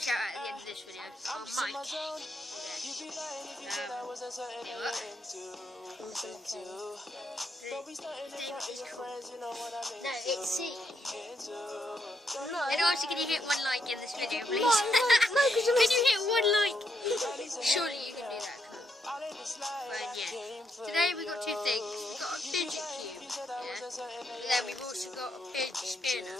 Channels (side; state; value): both; normal; correlation 0.78